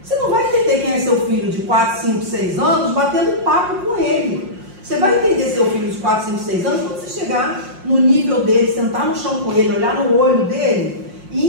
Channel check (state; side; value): late; left; 5.5 ms